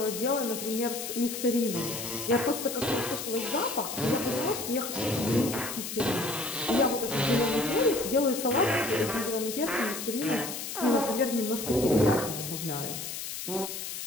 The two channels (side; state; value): left; noise; hiss, 6 dB below the sound